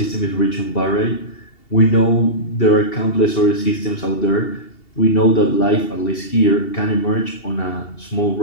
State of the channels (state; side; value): late; right; 2.7 ms